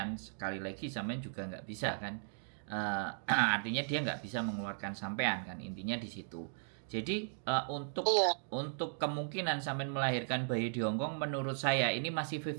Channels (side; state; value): left; silent; digital silence